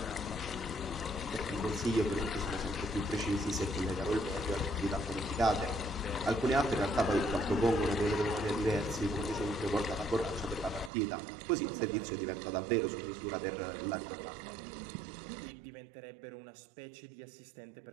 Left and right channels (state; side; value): drops out; left; at 10.9 s